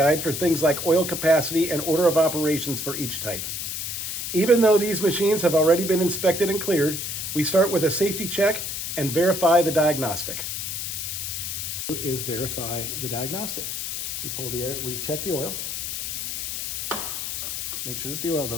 for things like oil capacity and order of operations for each type. Even though these machines have already been inspected and cleared, we start with a safety check and verify the diagnostic. Is verify the diagnostic. We pull the air, we check the oil, make sure that the oil's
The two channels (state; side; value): noise; left; hiss, 4 dB below the sound